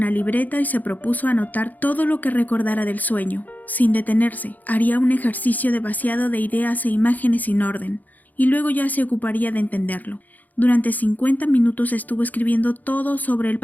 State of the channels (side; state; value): right; late; 0.082 ms